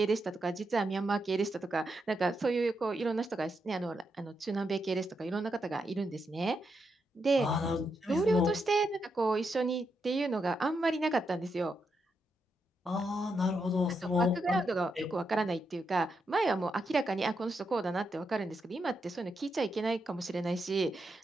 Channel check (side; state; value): both; normal; correlation 0.83